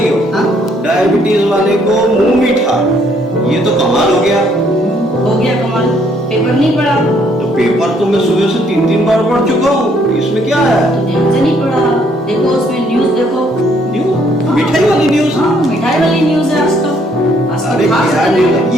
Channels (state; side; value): normal; both; correlation 0.67